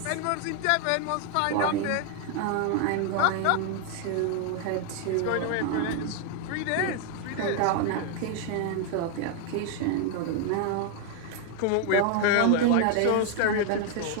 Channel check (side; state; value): both; different; correlation 0.00